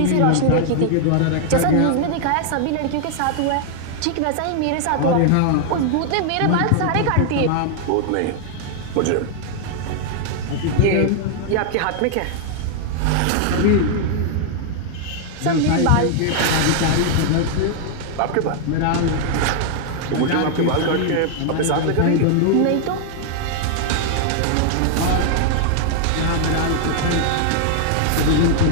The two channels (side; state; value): both; different; correlation 0.00